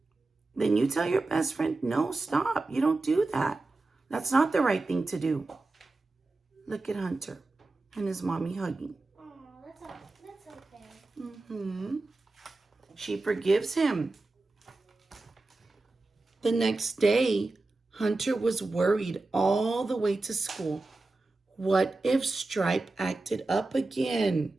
then you tell your best friend, no, stop. You don't do that. That's not the right thing to do. Look at Hunter and his mommy hugging. Oh, that's okay. She forgives him. The next day, Hunter was worried all the way to school. What if Stripe acted up again?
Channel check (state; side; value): quieter; left; 3.3 dB